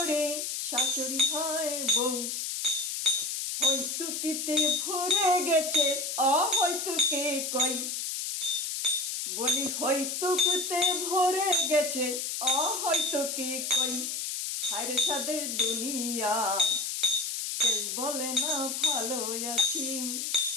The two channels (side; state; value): left; noise; hiss, 3 dB below the sound